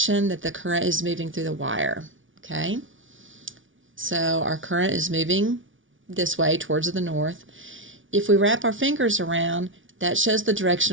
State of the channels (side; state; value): left; late; 0.57 ms